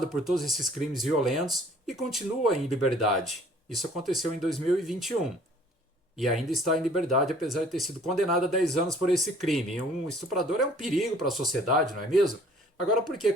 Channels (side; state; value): both; normal; correlation 0.55